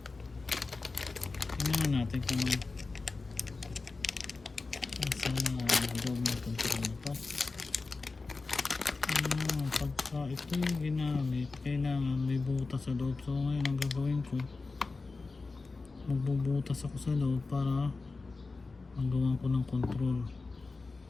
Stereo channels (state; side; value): quieter; right; 3.8 dB